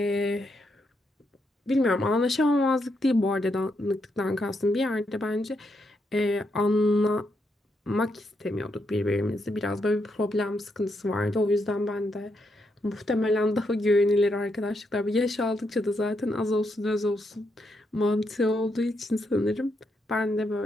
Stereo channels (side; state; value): both; normal; correlation 0.80